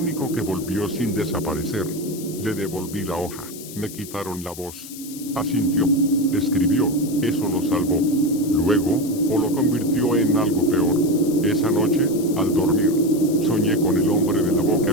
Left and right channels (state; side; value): noise; left; hiss, 14 dB below the sound